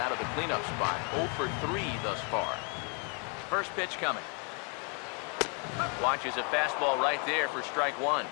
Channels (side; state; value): right; quieter; 37.2 dB